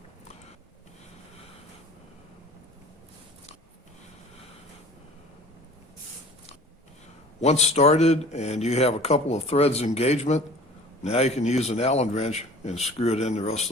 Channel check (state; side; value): normal; both; correlation 0.45